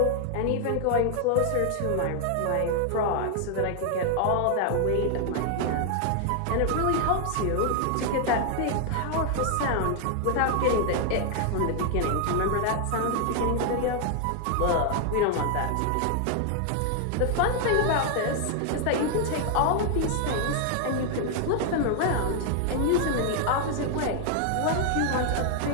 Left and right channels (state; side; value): different; both; correlation 0.00